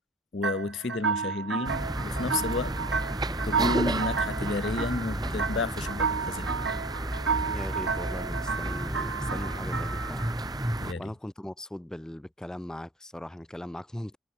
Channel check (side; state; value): both; normal; correlation 0.39